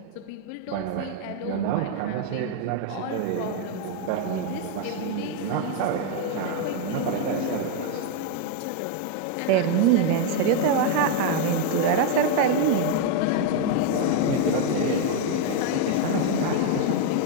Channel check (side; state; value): both; different; correlation 0.01